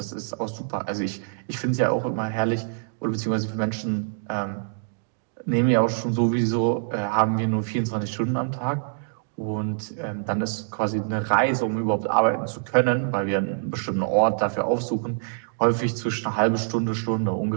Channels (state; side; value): silent; left; digital silence